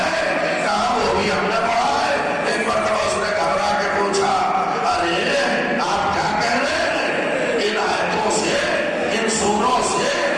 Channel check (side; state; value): both; identical; correlation 1.00